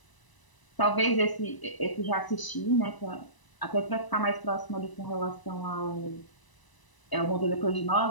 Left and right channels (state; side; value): late; right; 1.0 ms